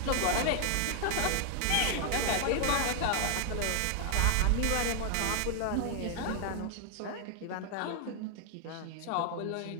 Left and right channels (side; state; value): both; different; correlation 0.00